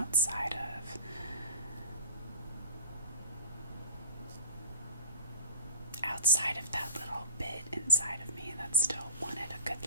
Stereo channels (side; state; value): both; inverted; correlation -0.36